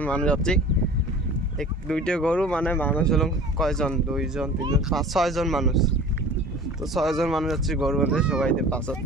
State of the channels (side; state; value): both; normal; correlation 0.42